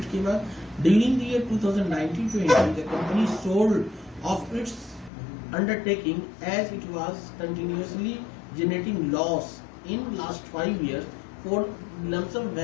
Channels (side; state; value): right; drops out; at 5.1 s